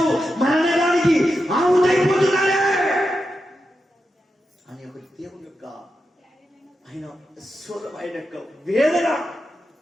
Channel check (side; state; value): both; normal; correlation 0.88